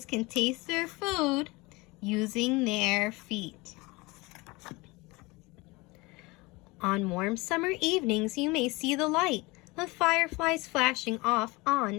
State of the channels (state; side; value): quieter; right; 23.8 dB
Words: can taste their food using their feet. On warm summer evenings, you may see the light of fireflies flashing off on